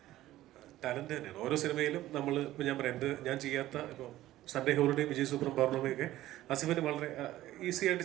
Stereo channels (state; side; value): quieter; left; 14.9 dB